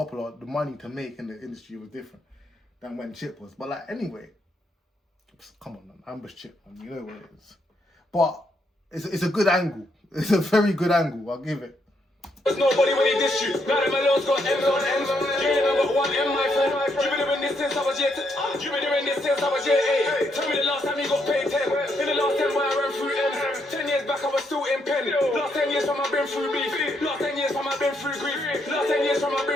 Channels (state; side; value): normal; both; correlation 0.76